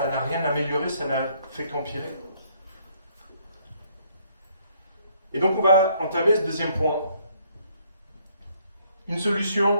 n'a rien amélioré, ça n'a fait qu'empirer? Et donc on va entamer ce deuxième point. Une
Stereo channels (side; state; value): both; inverted; correlation -0.67